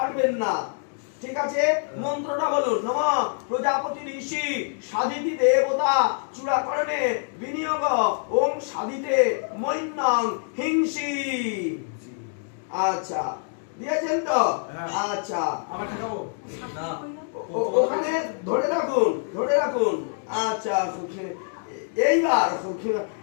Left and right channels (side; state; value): right; silent; 61 dB below the other